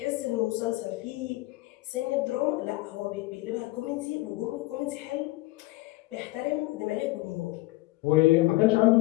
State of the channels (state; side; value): quieter; right; 20.1 dB